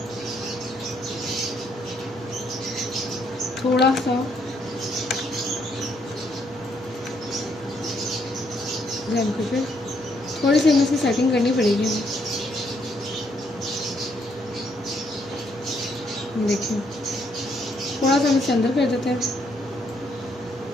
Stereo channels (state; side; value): normal; both; correlation 0.72